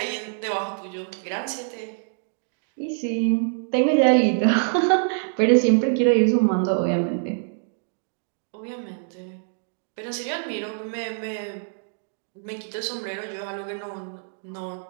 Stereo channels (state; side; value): silent; left; digital silence